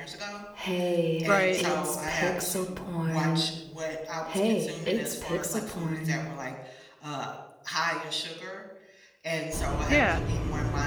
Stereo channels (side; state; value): both; identical; correlation 1.00